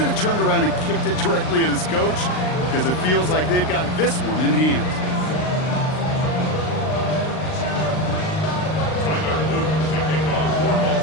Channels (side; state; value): right; late; 39 ms